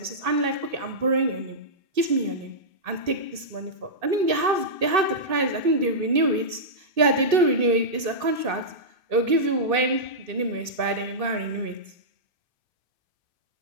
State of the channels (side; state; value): left; late; 2.6 ms